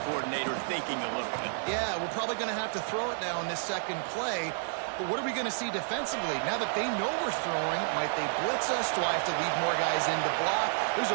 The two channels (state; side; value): silent; left; digital silence